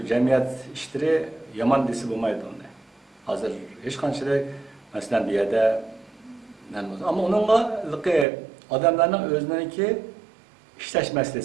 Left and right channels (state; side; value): drops out; left; at 8.2 s